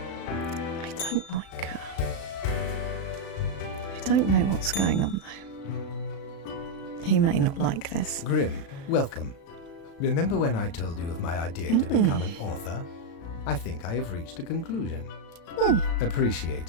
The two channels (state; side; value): late; right; 36 ms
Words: I don't like her. I don't know what's going on though. He may not like this. Grim, welcome. Remember when I told you of my idea to become an author? I think I have reached a conclusion.